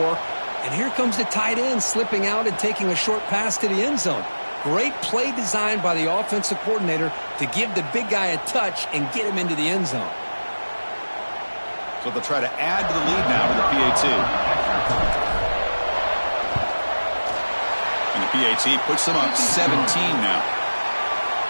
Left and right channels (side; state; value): both; inverted; correlation -1.00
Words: And here comes the tight end slipping out and taking a short pass to the end zone. Great play designed by the offensive coordinator to give the big guy a touch and get him into the end zone. So they'll try to add to the lead now with the PAT. And the PAT puts them up 17 now.